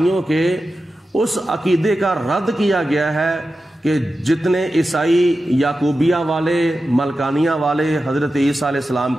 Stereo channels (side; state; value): both; normal; correlation 0.92